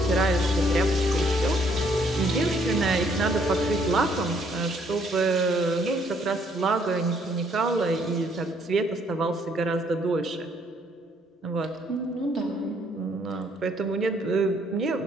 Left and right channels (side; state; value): both; normal; correlation 0.67